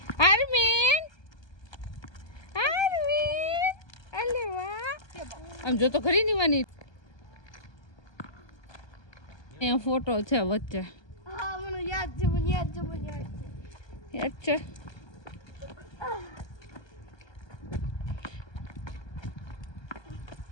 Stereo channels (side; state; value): right; late; 1.3 ms